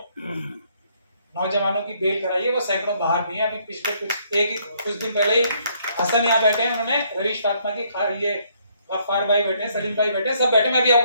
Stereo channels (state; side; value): inverted; both; correlation -0.68